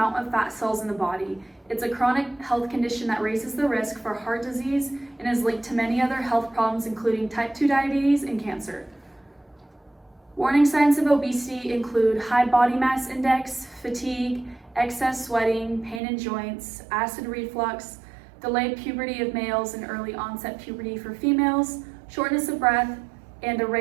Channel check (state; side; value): drops out; left; at 16.0 s